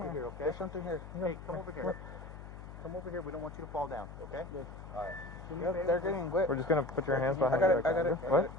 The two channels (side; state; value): left; noise; hum, 13 dB below the sound